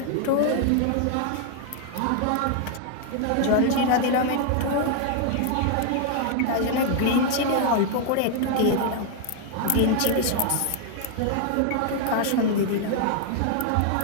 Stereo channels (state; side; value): different; both; correlation 0.00